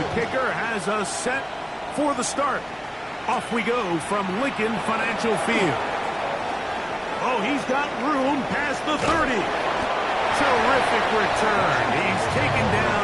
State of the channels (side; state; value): both; identical; correlation 1.00